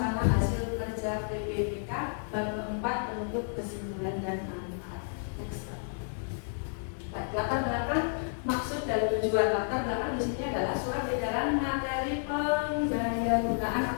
hasil kerja PPPK. Bab keempat penutup kesimpulan dan manfaat. Latar belakang, maksud dan tujuan. Latar belakang di sini adalah surat edaran materi pendayagunaan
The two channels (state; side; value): silent; right; digital silence